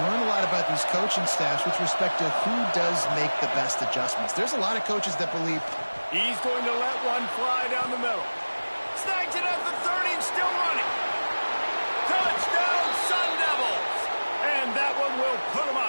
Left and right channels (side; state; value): both; inverted; correlation -1.00